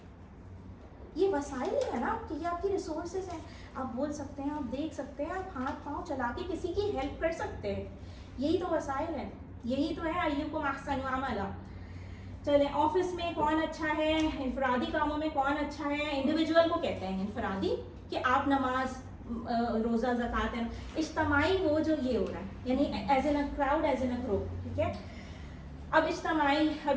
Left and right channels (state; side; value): identical; both; correlation 1.00